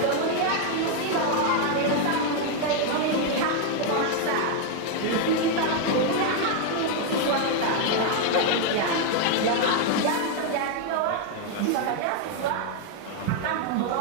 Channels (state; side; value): different; both; correlation 0.01